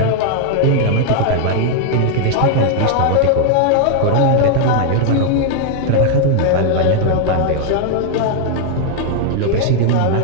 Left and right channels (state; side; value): different; both; correlation -0.01